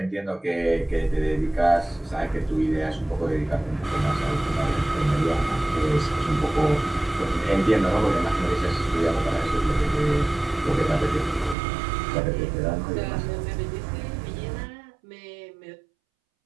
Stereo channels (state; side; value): drops out; left; at 11.6 s